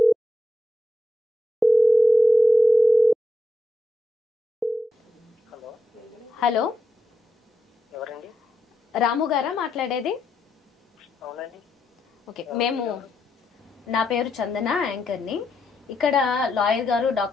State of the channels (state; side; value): normal; both; correlation 0.83